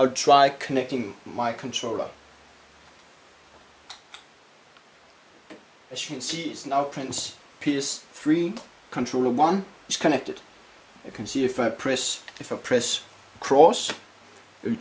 try connecting my controller. As you can see, it now prints PS3 controller 1 is connected. You can see if I press cross, it will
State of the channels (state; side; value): identical; both; correlation 1.00